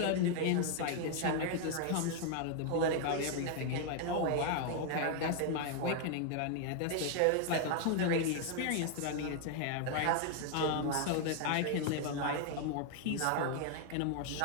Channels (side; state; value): both; different; correlation 0.00